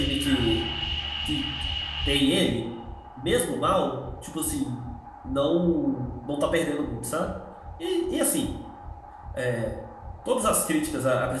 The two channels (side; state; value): both; identical; correlation 1.00